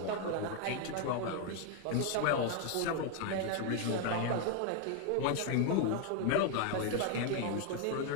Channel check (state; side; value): different; both; correlation 0.01